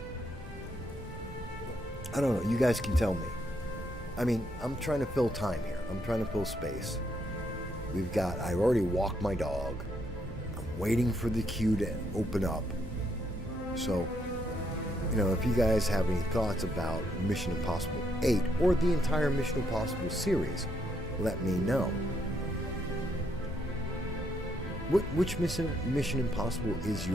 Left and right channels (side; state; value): both; normal; correlation 0.75